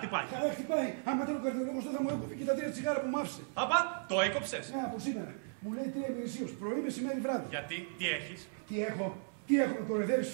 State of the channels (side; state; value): left; silent; 54 dB below the other